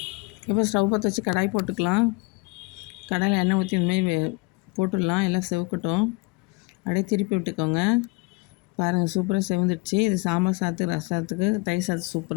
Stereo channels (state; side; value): quieter; right; 26.7 dB